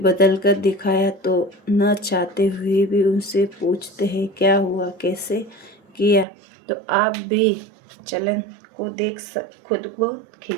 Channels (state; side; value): drops out; left; at 6.2 s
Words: कर दिखाया तो न चाहते हुए भी उनसे पूछते हैं क्या हुआ, कैसे किया, तो आप भी चलन को देख खुद को